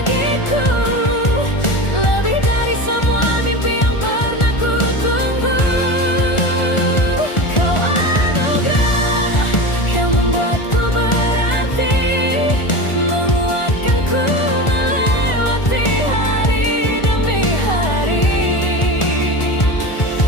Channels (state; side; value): late; right; 1.4 ms